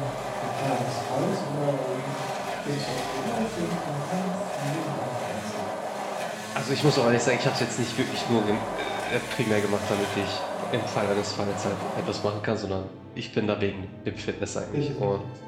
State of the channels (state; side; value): identical; both; correlation 1.00